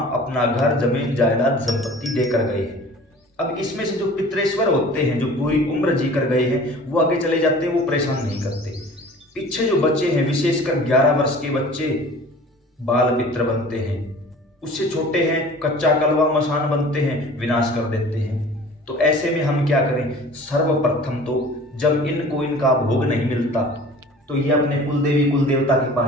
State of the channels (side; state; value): both; normal; correlation 0.44